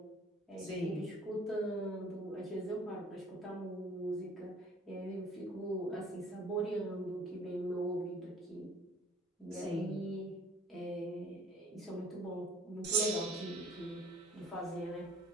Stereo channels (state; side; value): normal; both; correlation 0.53